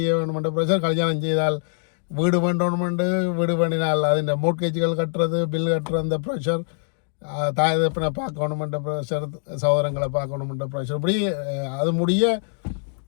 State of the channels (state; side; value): silent; right; digital silence